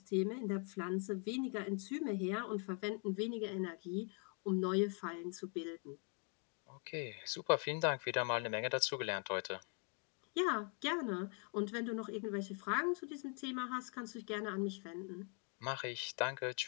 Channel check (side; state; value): right; quieter; 37.1 dB